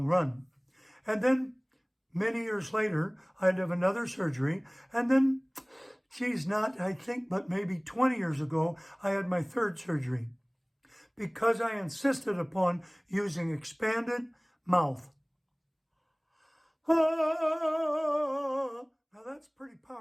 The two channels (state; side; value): identical; both; correlation 1.00